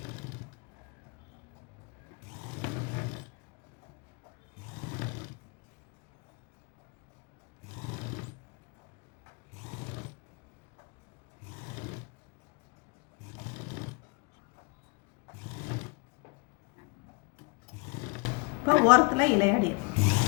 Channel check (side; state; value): right; quieter; 31.2 dB